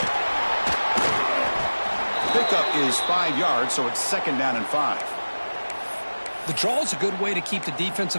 Pickup is 5 yards, so it's 2nd down and 5. The draw is a good way to keep the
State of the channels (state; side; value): inverted; both; correlation -1.00